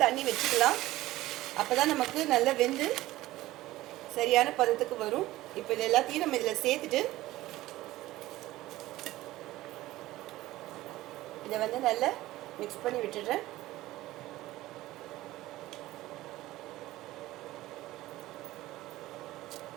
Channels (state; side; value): quieter; left; 16.7 dB